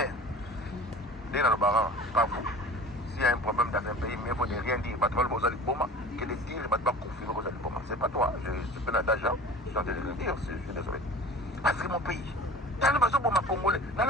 Dès dans le baran, pas vous. S'il y a un problème dans un pays, mais il faut ne rien dire. Que de dire, il ne va pas confirmer que vous allez pas. C'est pas toi. Je suis d'argent. Je suis en train de le dire. Je suis désolé. Parce que mon pays, dans le besoin pour ma Congolais, dans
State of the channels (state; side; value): normal; both; correlation 0.40